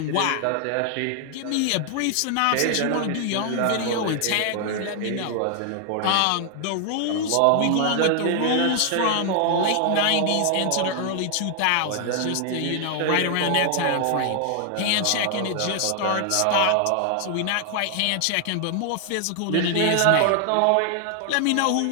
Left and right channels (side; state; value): both; different; correlation 0.00